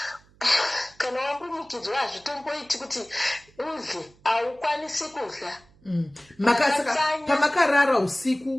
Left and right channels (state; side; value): noise; right; hum, 29 dB below the sound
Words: kana wambunyikidzwa hazvitomboiti kuti udle, haukwanisi kudla. Pamakarara